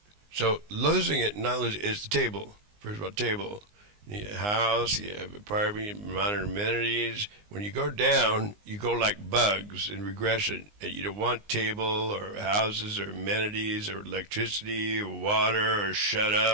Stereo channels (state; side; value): late; left; 19 ms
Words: So losing it, not losing it, is the table. First of all, table. You have a house, you have apartment, modern amenities. When you go down, you go like bugs in regression. And you don't want table or houses or amenities or electricity or water or shut